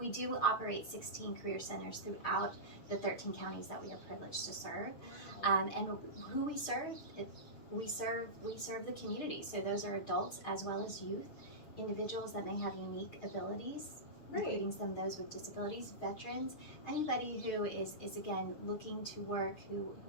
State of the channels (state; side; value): late; right; 6.6 ms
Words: do operate 16 career centers throughout the 13 counties that we are privileged to serve. And who we serve, we serve the community. So those are adults as well as youth, individuals that may have unique abilities, including some of those with disabilities, veterans, anybody who is again looking to work, who